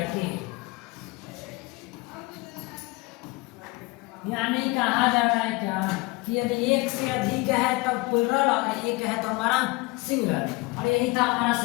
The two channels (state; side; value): quieter; right; 24.1 dB